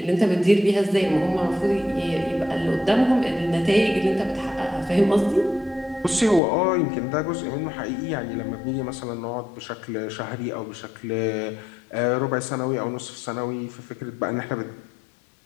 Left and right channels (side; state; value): right; drops out; at 6.4 s